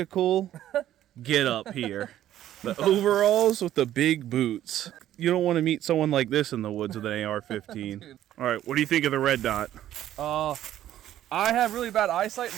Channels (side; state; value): left; quieter; 12.4 dB